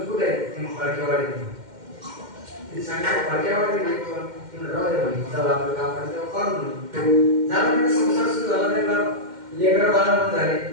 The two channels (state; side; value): late; left; 2.1 ms